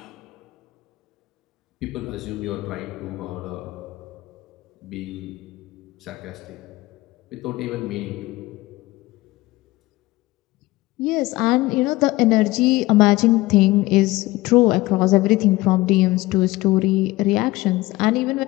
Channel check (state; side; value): quieter; right; 19.4 dB